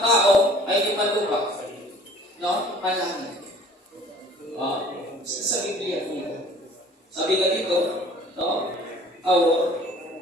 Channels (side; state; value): both; normal; correlation 0.51